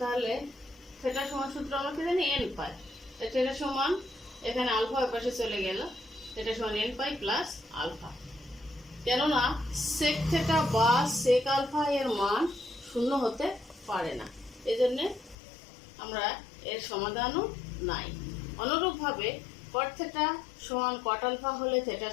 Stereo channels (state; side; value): drops out; right; at 15.4 s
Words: থিটা সমান সূত্র আমরা কি জানি n পাই। থিটা সমান এখানে আলফা ওই পাশে চলে গেল, থিটা সমান n পাই প্লাস আলফা। কেননা sec থিটা বা sec আলফা এর মান শূন্য হতে পারে না, এজন্য আমরা এর সমাধানও নাই। অনুরূপভাবে cot থিটা সমান cot আলফা হলে থিটা